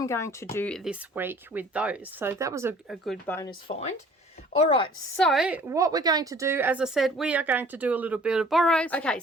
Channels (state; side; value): normal; both; correlation 0.52